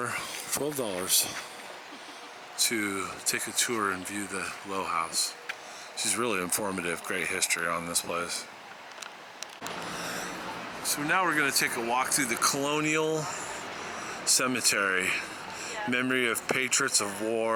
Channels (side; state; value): both; identical; correlation 1.00